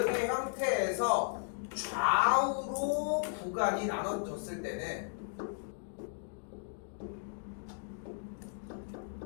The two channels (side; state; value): right; silent; digital silence